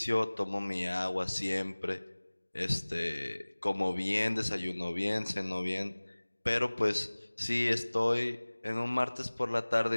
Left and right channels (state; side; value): inverted; both; correlation -1.00